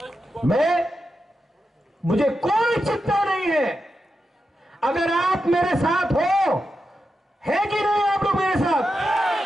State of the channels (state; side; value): normal; both; correlation 0.88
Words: मुझे कोई चिंता नहीं है। अगर आप मेरे साथ हो, है कि नहीं आप लोग मेरे साथ?